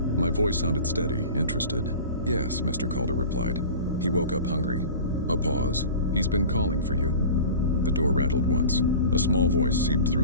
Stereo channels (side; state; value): both; inverted; correlation -0.37